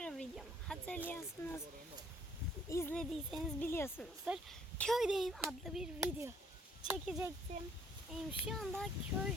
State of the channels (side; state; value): both; normal; correlation 0.62